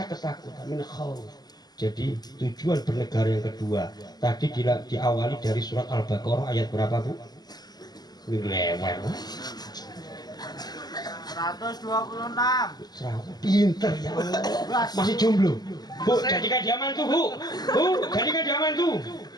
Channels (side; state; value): right; late; 0.20 ms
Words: ketakutan, min khauf. Jadi tujuan bernegara yang kedua tadi diawali dari surat Al-Baqarah ayat berapa, Bu? Lewat 126. Pinter ya Allah. Masih jomblo, Bu, jadikan dia mantu, Bu. Bu, jadikan dia mantu.